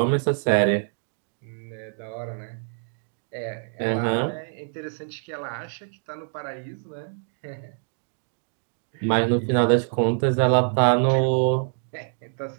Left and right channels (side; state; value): left; silent; digital silence